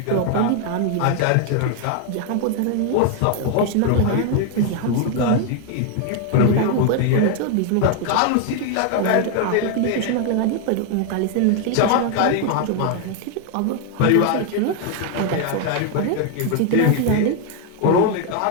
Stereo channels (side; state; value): both; different; correlation 0.00